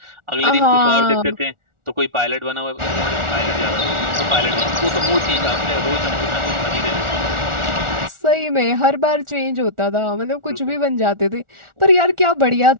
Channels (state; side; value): late; left; 1.4 ms